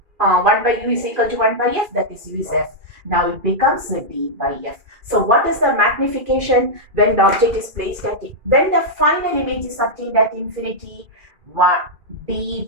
1 by U is equal to 1 by F, that is U is F. Now it becomes D by F. So what is the magnification when the object is placed at it? When the final image is obtained at infinity, 1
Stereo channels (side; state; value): left; late; 2.4 ms